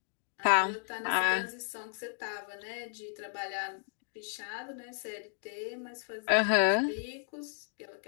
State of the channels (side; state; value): right; silent; digital silence